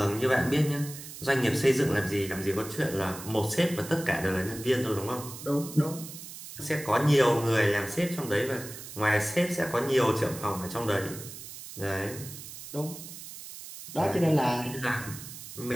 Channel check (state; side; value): noise; right; hiss, 12 dB below the sound